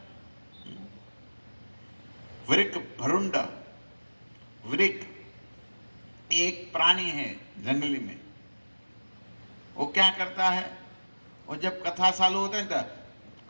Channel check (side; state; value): both; inverted; correlation -1.00